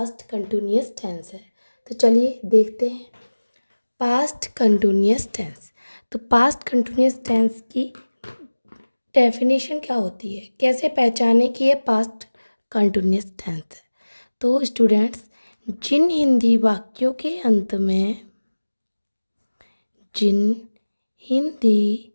कंटिन्यूअस टेंस है। तो चलिए देखते हैं पास्ट कंटिन्यूअस टेंस। तो पास्ट कंटिन्यूअस टेंस की डेफिनेशन क्या होती है, कैसे पहचाने कि ये पास्ट कंटिन्यूअस टेंस है। तो स्टूडेंट्स, जिन हिंदी वाक्यों के अंत में जिन हिंदी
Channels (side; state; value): both; inverted; correlation -1.00